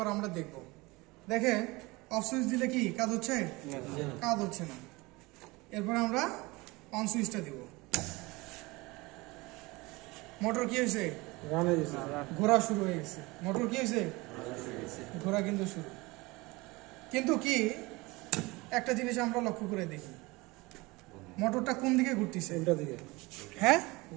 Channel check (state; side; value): quieter; left; 23.1 dB